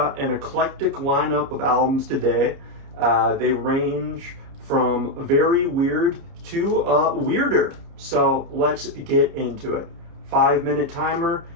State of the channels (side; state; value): left; late; 30 ms